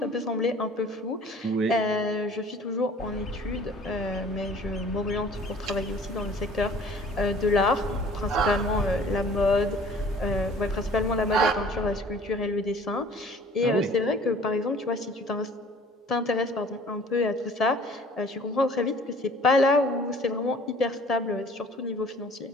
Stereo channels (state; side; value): normal; both; correlation 0.51